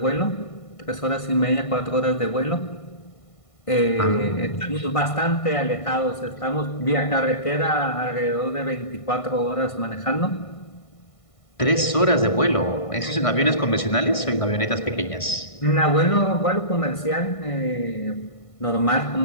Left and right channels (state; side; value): late; right; 1.5 ms